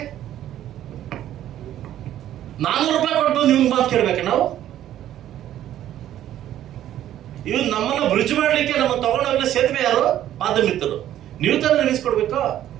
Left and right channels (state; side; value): quieter; left; 12.1 dB